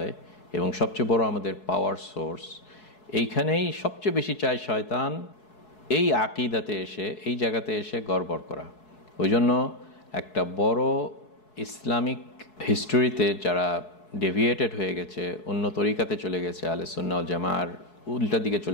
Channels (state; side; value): late; right; 4.7 ms